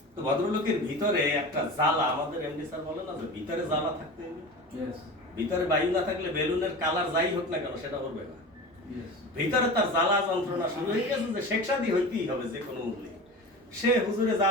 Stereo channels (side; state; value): both; normal; correlation 0.31